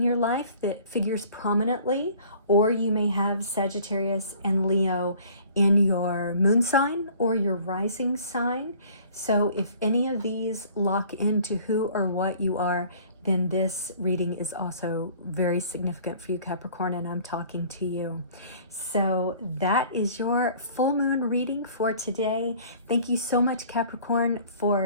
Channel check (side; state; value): both; inverted; correlation -0.51